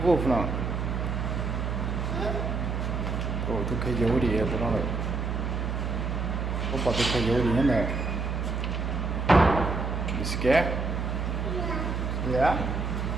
wolf now? Oh, the coyote here, but not. How about the coyote in there? You scared? Yeah?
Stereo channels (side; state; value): right; noise; hum, 1 dB below the sound